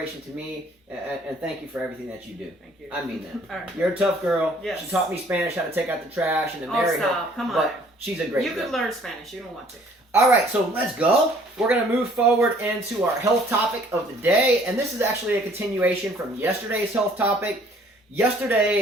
to me, and thank you for everything that you do. Thank you. I mean that. All right. You're a tough girl. Yes. She taught me Spanish, how to take out the trash, and to Oh, marry her. stop. Come on. But she's a great You girl. could learn Spanish. You don't want to. All right, so let's go. We're going to move forward into our health topic of the day, and this is actually a continuation from yesterday's health topic.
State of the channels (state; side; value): normal; both; correlation 0.57